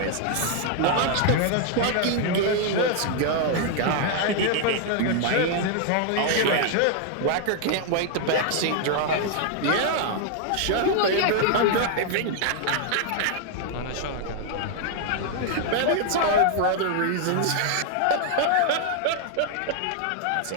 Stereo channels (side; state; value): both; different; correlation 0.00